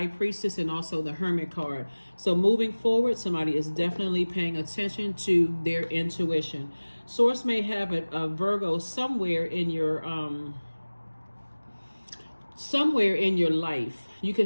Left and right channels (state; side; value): inverted; both; correlation -1.00